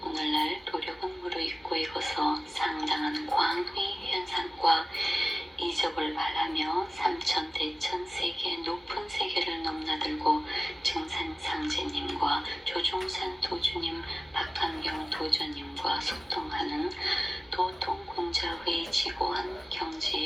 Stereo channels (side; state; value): both; normal; correlation 0.96